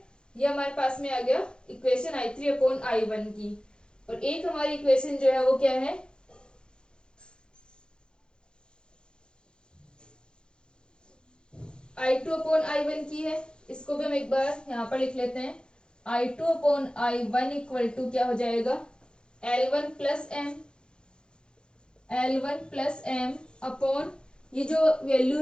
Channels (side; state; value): right; late; 0.049 ms